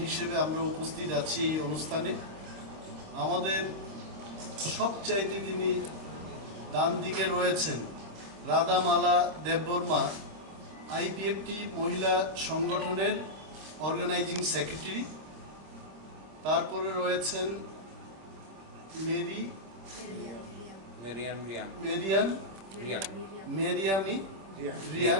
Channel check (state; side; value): late; left; 26 ms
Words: হিসেবে আমরা উপস্থিত আছি এই অনুষ্ঠানে। আমাদের সবচাইতে যিনি ডান দিকে রয়েছেন রাধামালা দেববর্মা, আইপিএফটি মহিলা সংগঠনের অর্গানাইজিং সেক্রেটারি। তারপরে রয়েছেন